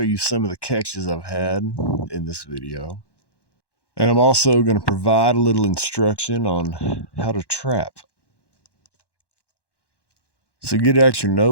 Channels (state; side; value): late; right; 1.1 ms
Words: you some of the catches I've had in this video. And I'm also going to provide a little instruction on how to trap. So get out your